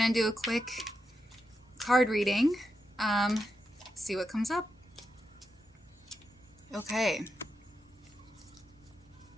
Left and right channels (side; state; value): both; normal; correlation 0.86